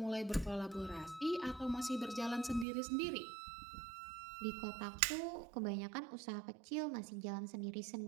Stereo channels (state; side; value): drops out; left; at 2.7 s